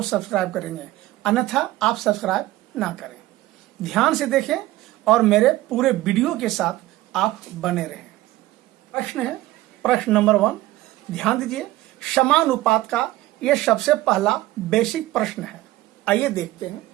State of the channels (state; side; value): quieter; left; 16.9 dB